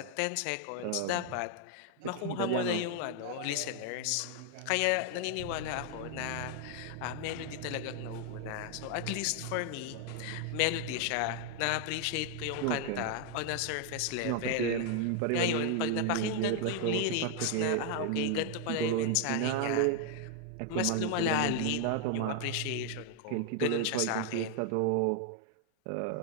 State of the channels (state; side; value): different; both; correlation 0.00